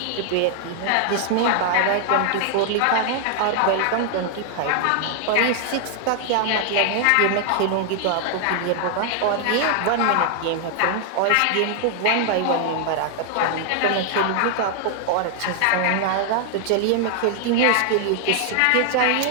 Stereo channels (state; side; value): different; both; correlation 0.00